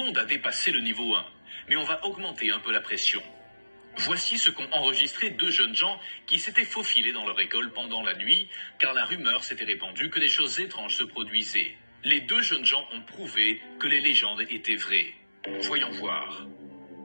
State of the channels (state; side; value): inverted; both; correlation -1.00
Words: a dépassé le niveau 1, mais on va augmenter un peu la pression. Voici ce qu'ont enregistré 2 jeunes gens qui s'étaient faufilés dans leur école pendant la nuit, car la rumeur s'était répandue que des choses étranges se produisaient. Les 2 jeunes gens ont prouvé que les légendes étaient vraies. Voyons voir.